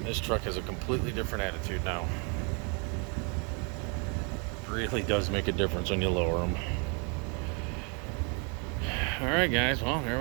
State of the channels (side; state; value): left; quieter; 35.5 dB